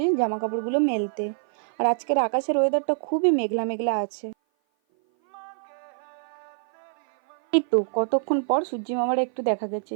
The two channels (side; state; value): left; silent; 56 dB below the other